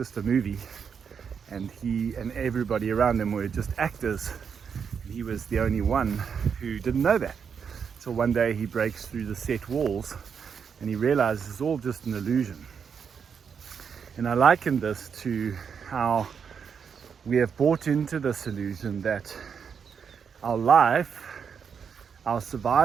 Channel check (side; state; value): left; quieter; 6.7 dB